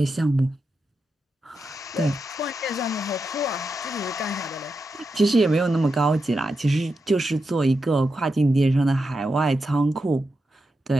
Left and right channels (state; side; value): normal; both; correlation 0.88